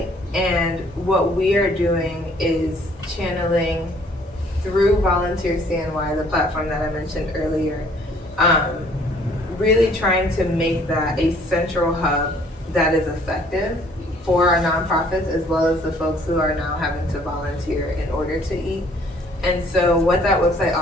and what we are doing is channeling through Volunteer CNY, the platform that I mentioned earlier, really trying to make that a central hub that is effective for our nonprofits as well as the folks who are now having to volunteer in order to eat. And so what that website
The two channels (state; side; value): normal; both; correlation 0.59